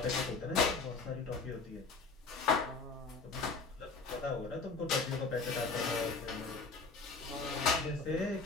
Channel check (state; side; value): quieter; right; 4.2 dB